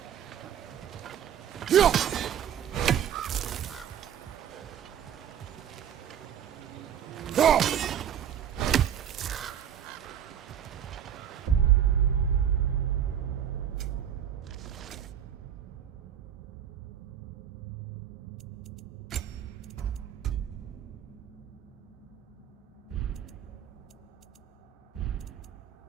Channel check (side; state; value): left; quieter; 9.5 dB